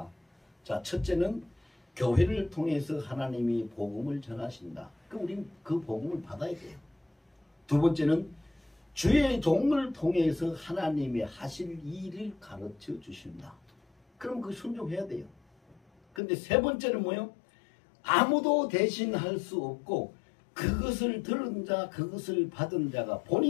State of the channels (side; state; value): right; drops out; at 16.2 s